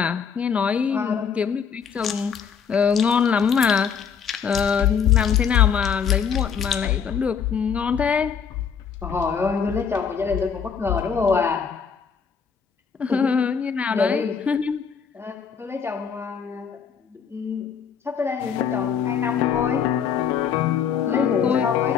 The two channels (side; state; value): right; quieter; 6.9 dB